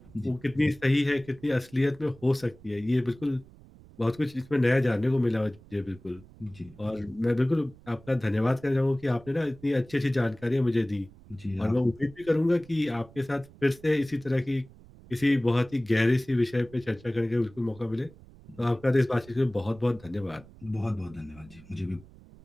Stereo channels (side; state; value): right; noise; rumble, 22 dB below the sound